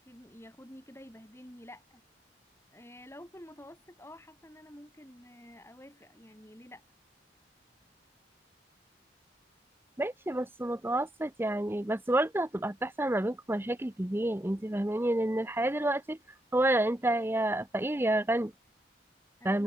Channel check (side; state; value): both; normal; correlation 0.82